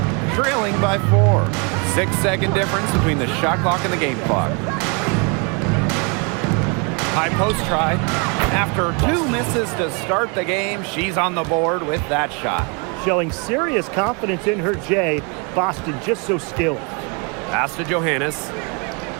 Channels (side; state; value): left; quieter; 33.6 dB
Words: Trailing by 4. 6-second difference between the shot clock and the game clock. High post try. After 2 misses to start the game, she's on the board with that shot. Showing serious confidence in her J. Boston just so skilled. Pass to Johannes.